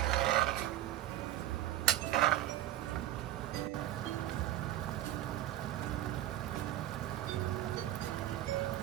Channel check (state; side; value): quieter; left; 13.6 dB